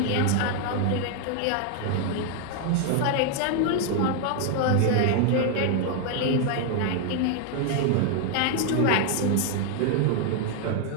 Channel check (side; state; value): both; different; correlation 0.00